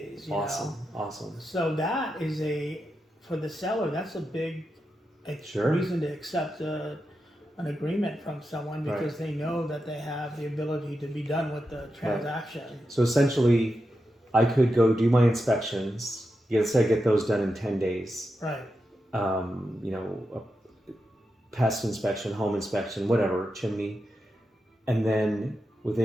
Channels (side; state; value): both; normal; correlation 0.88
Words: Awesome. So that is for the seller, that's a big Sure. reason to accept a an agreement from someone because they know that they have the ability to be done with the transaction. So essentially, I could go do my inspections. Let's say I get those done in 10 days. Right. You know, a pest inspection, home inspection, whatever, chimney. And then